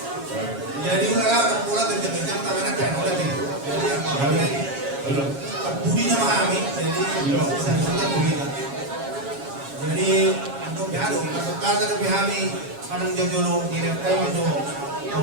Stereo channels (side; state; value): left; late; 7.3 ms